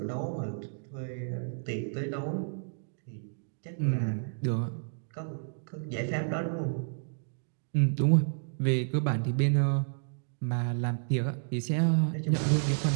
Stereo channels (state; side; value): silent; left; digital silence